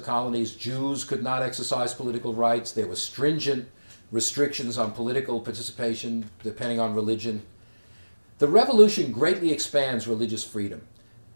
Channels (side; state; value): both; inverted; correlation -1.00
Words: colonies, Jews could not exercise political rights. There were stringent restrictions on political participation depending on religion. The Revolution greatly expands religious freedom.